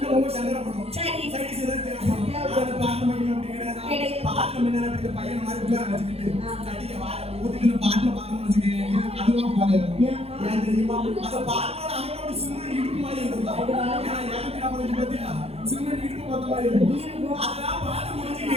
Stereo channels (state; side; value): late; left; 0.29 ms